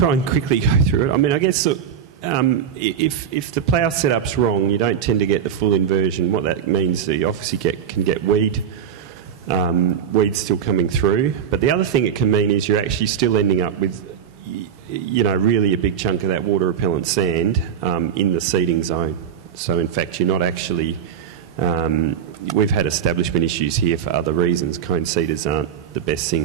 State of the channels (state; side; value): quieter; left; 8.3 dB